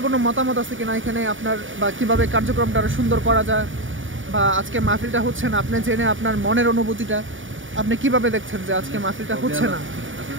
কোনো মতামত আছে কিনা এখানে আপনার, বা কিভাবে কার্যক্রমটা আরো সুন্দর করা যায়, বা আজকে মাহফিলটা হচ্ছে না, আপনি জেনে আপনার মনের অনুভূতিটা আপনি কিভাবে দেখছেন যে আজকে মাহফিলটা হচ্ছে না?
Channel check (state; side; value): late; left; 0.57 ms